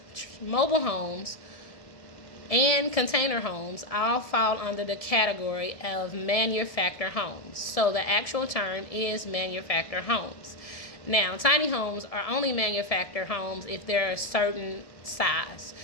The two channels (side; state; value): right; late; 1.7 ms